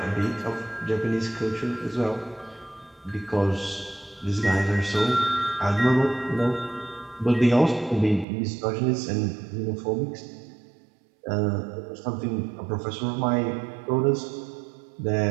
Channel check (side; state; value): left; drops out; at 8.2 s